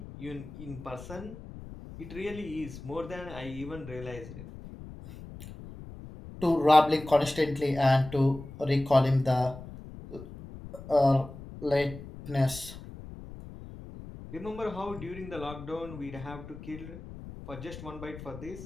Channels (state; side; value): noise; left; rumble, 14 dB below the sound